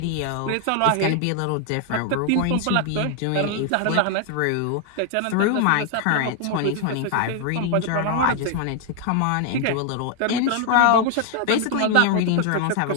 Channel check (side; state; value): both; different; correlation 0.00